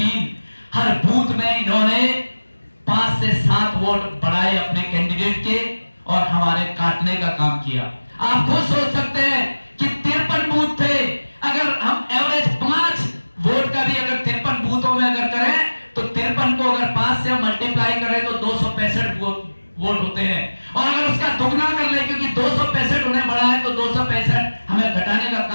हर बूथ में इन्होंने 5 से 7 वोट बढ़ाए अपने कैंडिडेट के और हमारे काटने का काम किया। आप खुद सोच सकते हैं कि 53 बूथ थे। अगर हम एवरेज 5 वोट का भी अगर 53 बूथों में अगर करें तो 53 को अगर 5 से मल्टीप्लाई करें तो 265 वोट होते हैं। और अगर उसका दुगना कर ले, क्योंकि 265 उन्हें बढ़ा है तो 265 हमें घटाने का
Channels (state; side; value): inverted; both; correlation -1.00